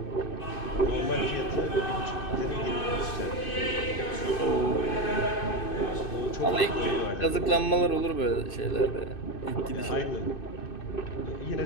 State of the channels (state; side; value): late; right; 2.6 ms